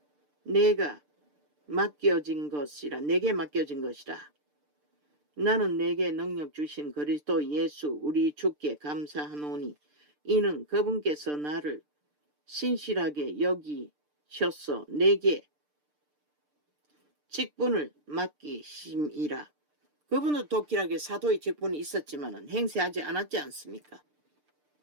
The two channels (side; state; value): left; late; 6.7 ms